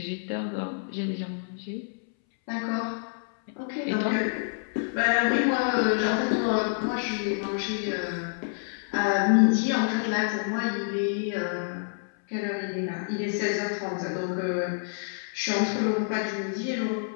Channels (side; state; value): right; silent; 59 dB below the other